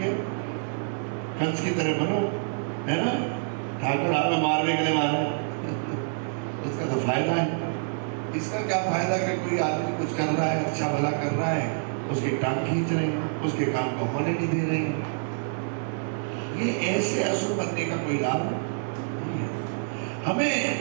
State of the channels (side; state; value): left; silent; digital silence